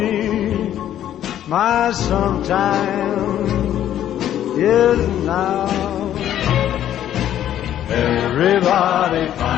my sometime is now. Everybody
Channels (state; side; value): quieter; right; 11.3 dB